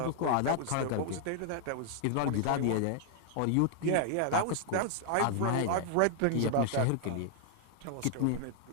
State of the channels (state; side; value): different; both; correlation 0.00